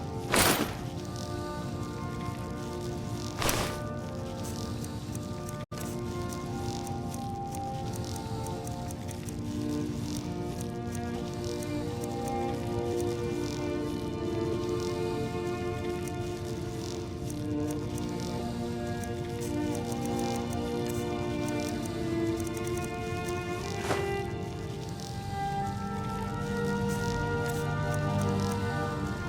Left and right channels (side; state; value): both; identical; correlation 1.00